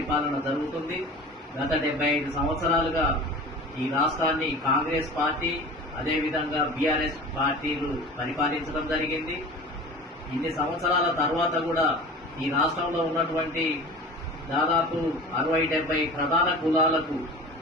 జరుగుతుంది. గత 75 సంవత్సరాలుగా ఈ రాష్ట్రాన్ని కాంగ్రెస్ పార్టీ, అదేవిధంగా బీఆర్ఎస్ పార్టీలు పరిపాలించడం జరిగింది. ఇన్ని సంవత్సరాల తర్వాత కూడా ఈ రాష్ట్రంలో ఉన్నటువంటి దాదాపు 60-70 ప్రధాన కులాలకు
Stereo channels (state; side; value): normal; both; correlation 0.38